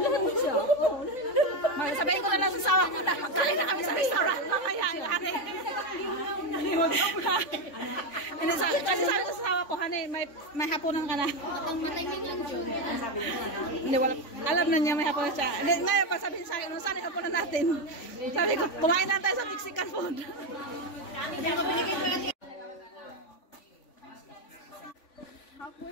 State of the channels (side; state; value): right; late; 3.5 ms